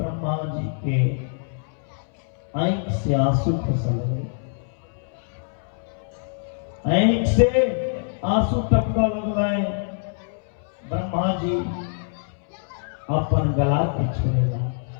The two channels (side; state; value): right; silent; 62 dB below the other